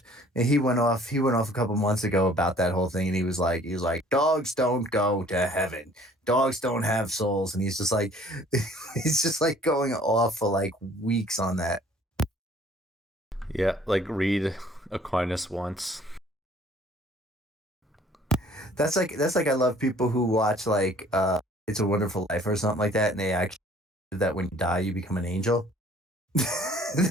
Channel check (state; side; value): normal; both; correlation 0.55